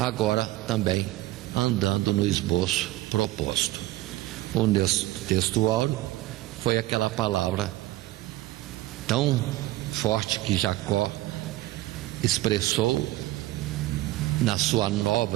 também andando no esboço proposto. O texto áureo foi aquela palavra tão forte que Jacó expressou na sua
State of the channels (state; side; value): quieter; left; 17.7 dB